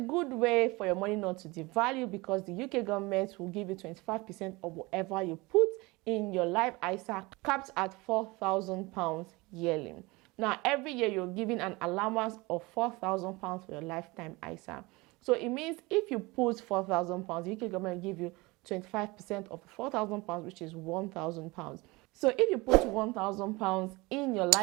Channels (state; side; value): quieter; left; 23.5 dB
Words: way for your money not to devalue because the UK government will give you 25% of whatever you put in your life ISA, capped at £4,000 yearly. Now, every year you're given an allowance of £4,000 for your lifetime ISA. So it means if you put £4,000, the UK government will give you 25% of £4,000, which is £1,000. So if you put £1,000 in your